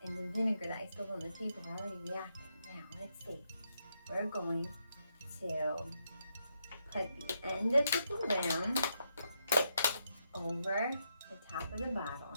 and the vinegar that I spilled on the table are already reacting. Now, let's see. We're going to put the end of the balloon over the top of the bottle,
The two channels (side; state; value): both; inverted; correlation -0.80